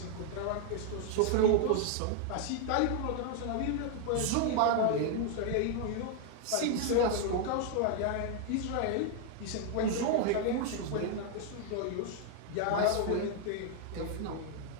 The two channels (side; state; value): both; different; correlation 0.00